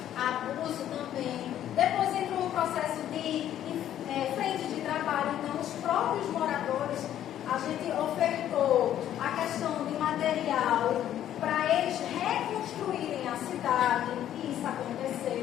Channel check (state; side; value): quieter; right; 11.3 dB